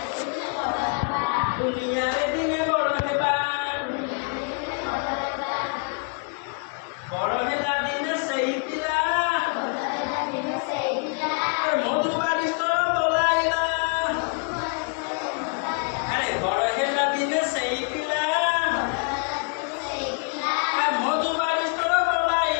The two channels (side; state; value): right; quieter; 36.5 dB